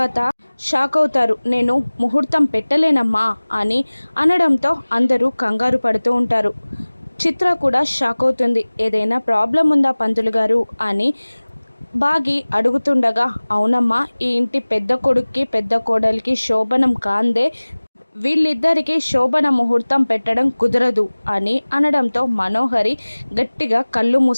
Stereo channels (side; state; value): both; inverted; correlation -1.00